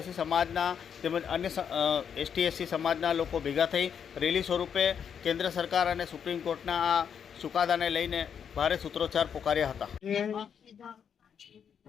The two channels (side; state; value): right; quieter; 7.7 dB